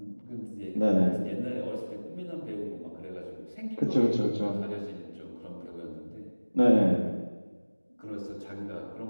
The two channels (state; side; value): inverted; both; correlation -1.00